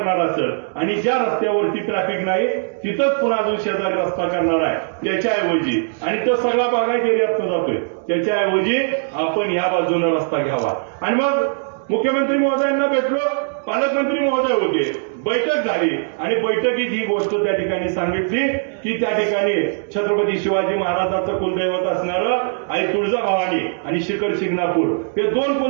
असेल आणि ज्या रस्त्यावरती ट्रॅफिक नाही तिथंच पुन्हा अजून शेजारी रस्ता करणार आहे, त्याच्याऐवजी आणि तो सगळा बागायत एरियातनं जातोय, त्याच्याऐवजी आपण या बाजूने रस्ता घ्यावा. आणि मग मुख्यमंत्री महोदयांना भेटलो, पालकमंत्री महोदय होते, बैठक झाली आणि बैठकीत ही गोष्ट त्या ठिकाणी सांगितली की त्या ठिकाणी छत्रपती शिवाजी महाराजांचं कुलदैवत असणारं आई तुळजाभवानी आणि शिखर शिंगणापूर हे 2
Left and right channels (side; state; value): left; silent; digital silence